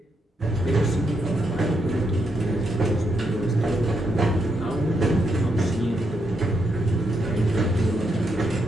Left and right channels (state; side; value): normal; both; correlation 0.80